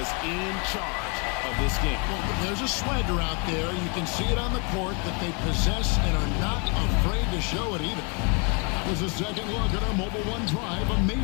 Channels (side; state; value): right; quieter; 34.1 dB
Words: in charge of this game. Well, there's a swagger out there. You can see it on the court that they possess and are not afraid to show it either. There's a second look at our Mobile One drive.